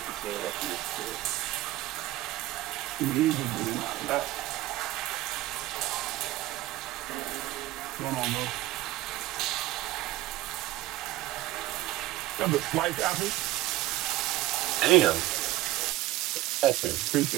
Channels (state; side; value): quieter; left; 16.7 dB